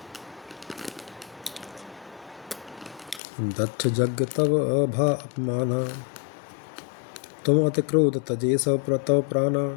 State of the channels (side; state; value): right; drops out; at 3.2 s